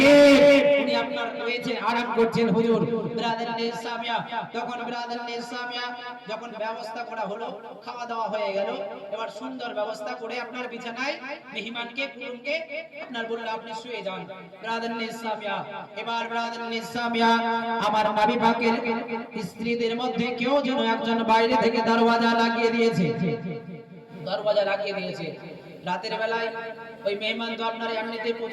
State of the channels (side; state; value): both; identical; correlation 1.00